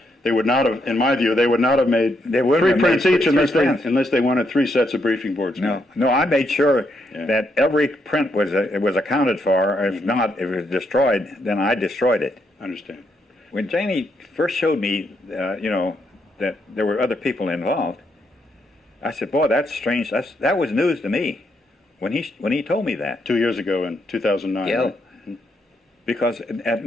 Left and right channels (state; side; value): normal; both; correlation 0.78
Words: they would not have, in my view, they would not have made 3 prints each unless they wanted 3 sets of briefing boards. No, I made sure that every print was accounted for. If not, if it was destroyed, then I destroyed it. I understand. When Janney first showed me, that there were other people involved, I said, "Boy, that's strange. That was news to me when he told me that." 2 years ago in 2009. Yeah. Right? Because at